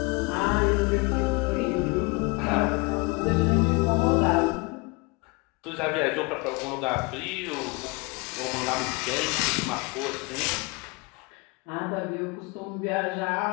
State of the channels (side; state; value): right; quieter; 28.3 dB